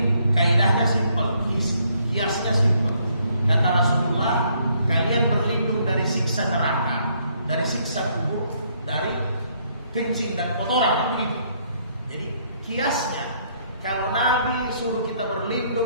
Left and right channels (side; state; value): both; inverted; correlation -0.69